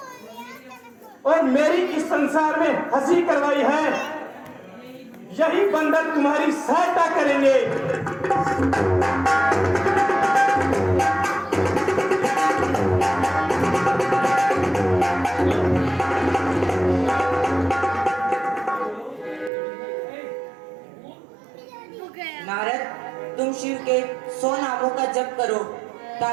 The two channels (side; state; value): left; drops out; at 19.5 s